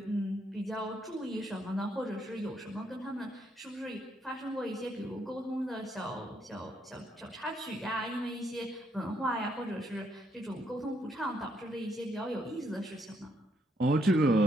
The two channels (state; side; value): normal; both; correlation 0.74